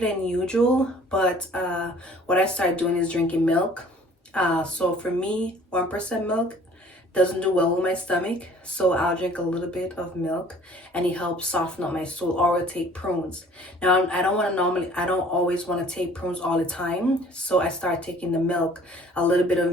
usual. But what I started doing is drinking milk. So for me, 1% milk doesn't do well with my stomach, so I'll drink a little bit of milk and it helps soften up my stool. Or I'll take prunes. Now I don't always want to take prunes all the time, so I start taking the milk, a little bit of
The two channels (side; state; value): both; normal; correlation 0.53